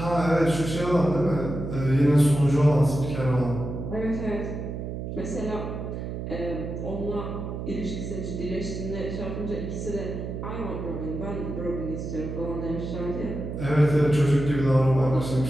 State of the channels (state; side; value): noise; right; hum, 6 dB below the sound